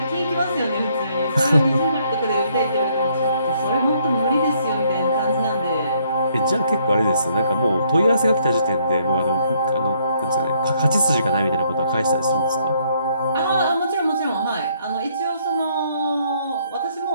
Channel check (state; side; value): inverted; both; correlation -0.68